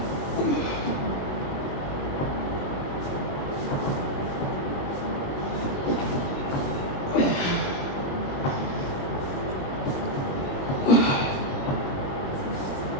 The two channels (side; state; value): right; late; 21 ms